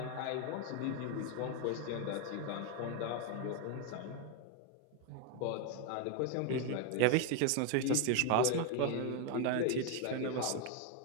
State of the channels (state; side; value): different; both; correlation 0.01